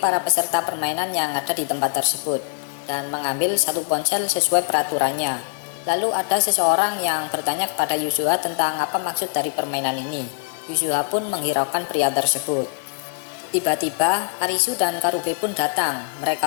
para peserta permainan yang ada di tempat tersebut dan mengambil satu ponsel sesuai peraturannya. Lalu ada seseorang yang bertanya kepada Yuzuha tentang apa maksud dari permainan ini. Yuzuha pun menghiraukan pria tersebut. Tiba-tiba Arisu dan Karube pun datang.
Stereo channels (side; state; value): right; quieter; 38.0 dB